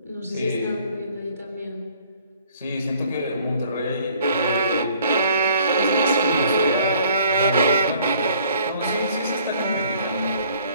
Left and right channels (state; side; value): inverted; both; correlation -0.58